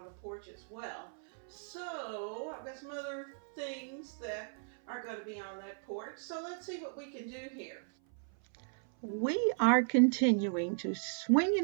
the porch as well. So I've got some other things that are going to be on that porch. So let's see what we can do here. We are continuing to swing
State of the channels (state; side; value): silent; left; 54 dB below the other